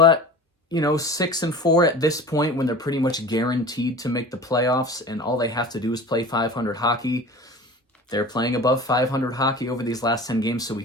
you know, 6-4 at this point when they're pretty much guaranteed to make the playoffs and all they have to do is play 500 hockey. They're playing above 500 hockey over these last 10 games, so we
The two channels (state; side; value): normal; both; correlation 0.38